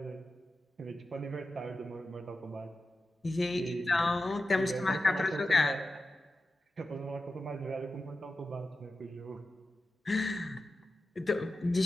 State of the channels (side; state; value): both; normal; correlation 0.92